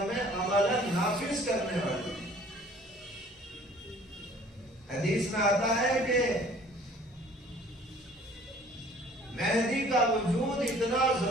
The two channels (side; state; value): both; normal; correlation 0.53